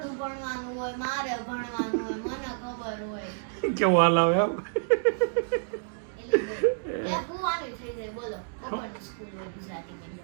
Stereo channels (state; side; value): silent; left; digital silence